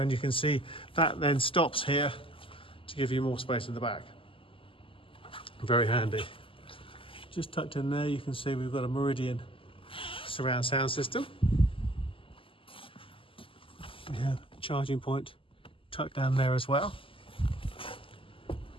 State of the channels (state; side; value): late; right; 0.26 ms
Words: you can see that then stops here to give you more space in the back. Very handy. Just tucked in there you can see we've got a Meridian surround sound system. We have a charging point tucked down there as well.